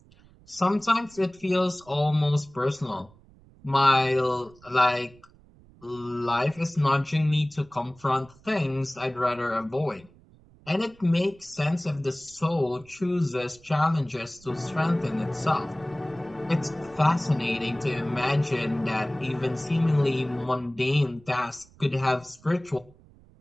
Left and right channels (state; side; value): noise; right; rumble, 26 dB below the sound